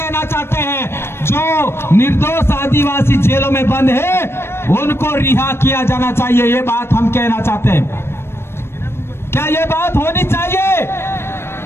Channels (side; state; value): right; late; 0.12 ms